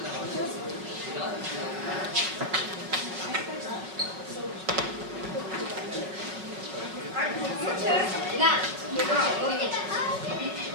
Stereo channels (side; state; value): left; late; 5.5 ms